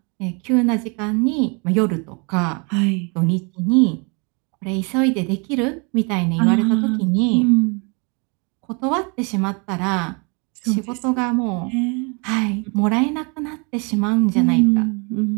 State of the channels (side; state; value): left; quieter; 32.7 dB